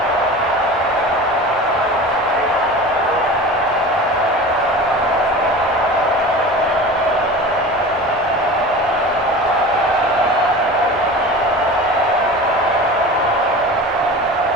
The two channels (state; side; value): normal; both; correlation 0.35